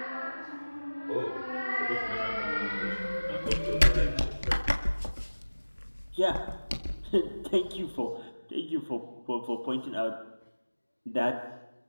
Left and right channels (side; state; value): both; inverted; correlation -1.00